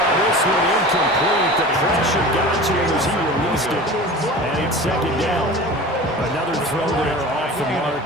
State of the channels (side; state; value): both; normal; correlation 0.36